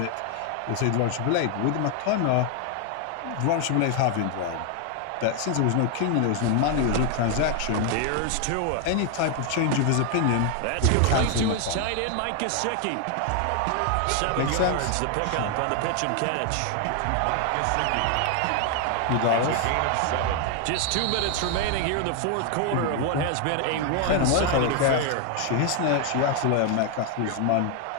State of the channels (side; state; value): both; different; correlation 0.01